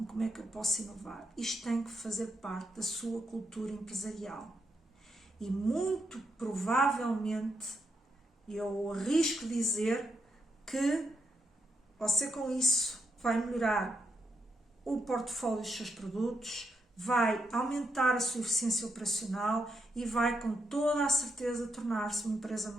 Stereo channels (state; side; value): normal; both; correlation 0.80